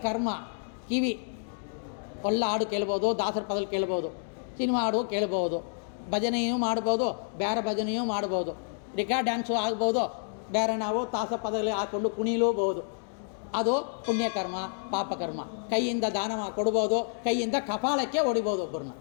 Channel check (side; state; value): right; silent; digital silence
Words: ಕರ್ಮ. ಕಿವಿ ಒಳ್ಳ ಹಾಡು ಕೇಳ್ಬೋದು, ದಾಸರ ಪದಗಳು ಕೇಳ್ಬೋದು, ಸಿನಿಮಾ ಹಾಡು ಕೇಳ್ಬೋದು, ಭಜನೆಯೂ ಮಾಡ್ಬೋದು, ಬೇರೆ ಭಜನೆಯೂ ಮಾಡ್ಬೋದು, ರಿಕಾರ್ಡ್ ಡ್ಯಾನ್ಸು ಆಗ್ಬೋದು, ಬೇರೆ ನಾವು ತಾಸ ಪದಗಳು ಹಾಕ್ಕೊಂಡು ಕುಣಿಲೂಬಹುದು. ಅದು ಪುಣ್ಯಕರ್ಮ, ಪಾಪಕರ್ಮ. ಕೈಯಿಂದ ದಾನ ಕೊಡ್ಬೋದು, ಕೈಯಿಂದ ಕಪಾಳಕ್ಕೆ ಹೊಡಿಬೋದು, ಒಬ್ಬರನ್ನ